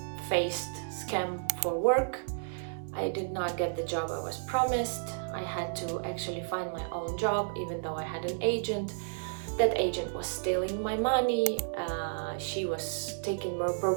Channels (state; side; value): silent; left; digital silence